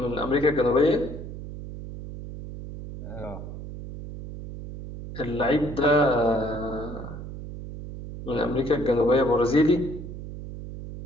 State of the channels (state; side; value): noise; right; hum, 10 dB below the sound